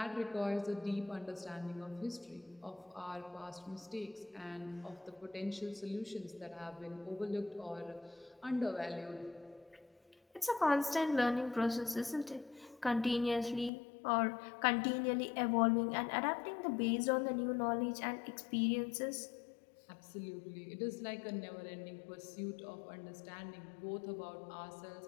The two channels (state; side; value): drops out; right; at 13.7 s